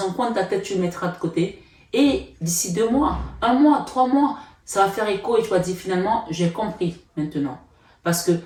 un coin de ta tête, tu le mettras de côté et d'ici 2 mois, 1 mois, 3 mois, ça va faire écho et tu vas dire finalement, j'ai compris maintenant. Parce que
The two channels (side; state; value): both; identical; correlation 1.00